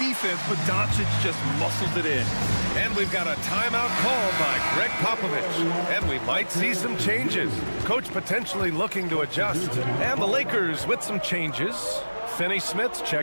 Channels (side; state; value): both; inverted; correlation -1.00